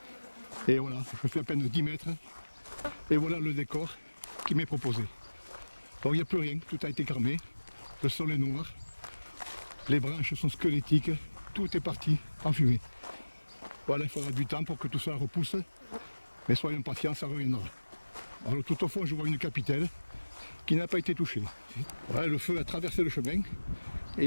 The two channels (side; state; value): both; inverted; correlation -1.00